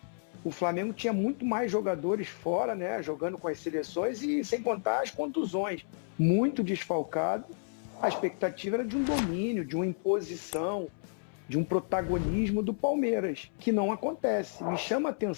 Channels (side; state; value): right; silent; 57 dB below the other